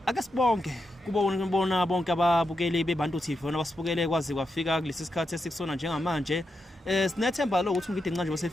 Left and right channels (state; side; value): normal; both; correlation 0.86